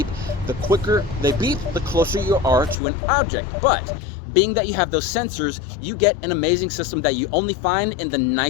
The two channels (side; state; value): right; drops out; at 2.8 s